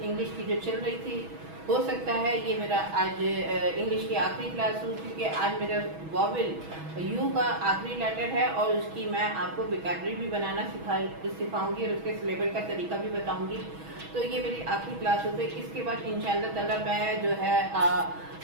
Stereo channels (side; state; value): left; late; 6.2 ms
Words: इंग्लिश की जो चल रही थी, हो सकता है ये मेरा आज इंग्लिश की आखिरी क्लास हो, क्योंकि आज मेरा वॉवेल यू का आखिरी लेटर है और उसकी मैं आपको वोकैबुलरी भी बनाना सिखाऊंगी और उसके सिलेबस का तरीका भी बताऊंगी। तो ये मेरी आखिरी क्लास होती है। इसके बाद इंशाअल्लाह ताला मैं जो है